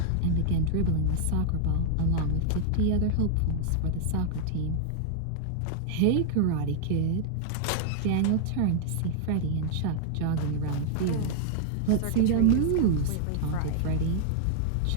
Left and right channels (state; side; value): different; both; correlation -0.01